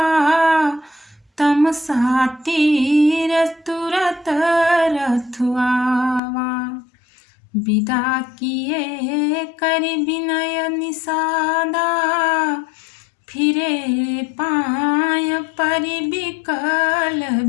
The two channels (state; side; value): drops out; right; at 6.2 s